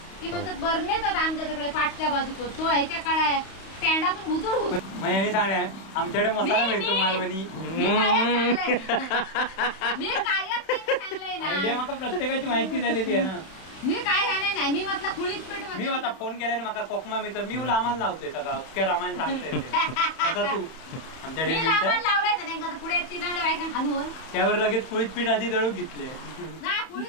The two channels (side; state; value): right; late; 32 ms